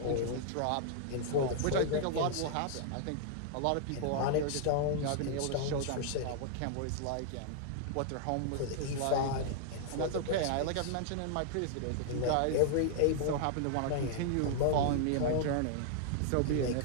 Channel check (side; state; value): both; different; correlation -0.01